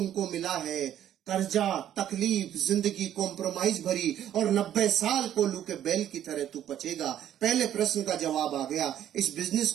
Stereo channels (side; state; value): left; quieter; 11.0 dB